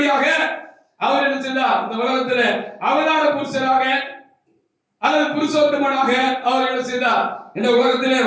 அவர் என்ன செய்தார்? இந்த உலகத்தில் அவதார புருஷராக அல்லது புருஷோத்தமனாக அவர் என்ன செய்தார்? இந்த உலகத்திலே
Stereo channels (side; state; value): both; identical; correlation 1.00